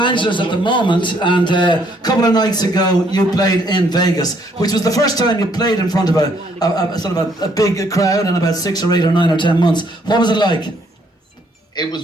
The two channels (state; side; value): normal; both; correlation 0.67